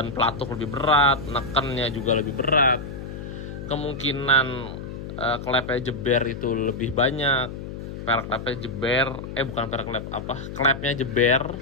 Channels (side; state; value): left; noise; hum, 9 dB below the sound